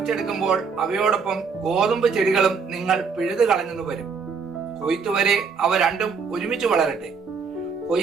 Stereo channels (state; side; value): quieter; left; 5.5 dB